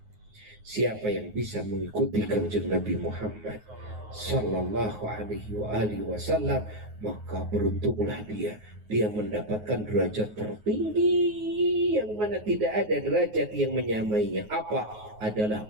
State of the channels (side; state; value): left; late; 9.5 ms